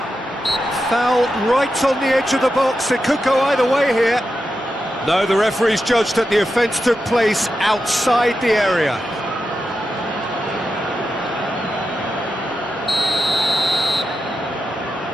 Foul right on the edge of the box. It could go either way here. No, the referee's judged that the offence took place outside the area.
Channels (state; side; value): normal; both; correlation 0.89